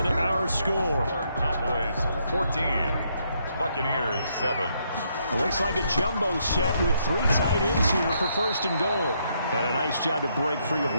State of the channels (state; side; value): inverted; both; correlation -0.74